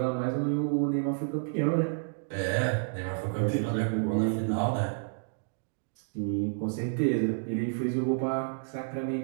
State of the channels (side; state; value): left; silent; digital silence